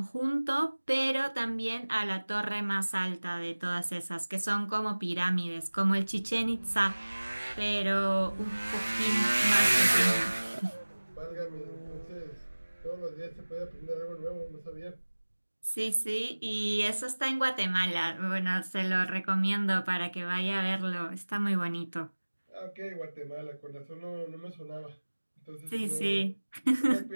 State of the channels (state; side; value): inverted; both; correlation -1.00